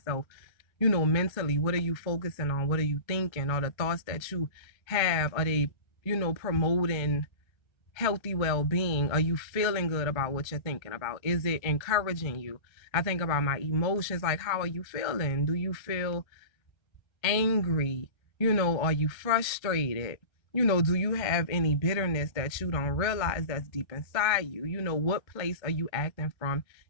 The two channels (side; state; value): right; late; 1.3 ms